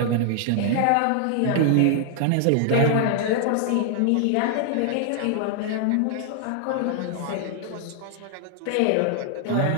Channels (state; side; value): different; both; correlation 0.00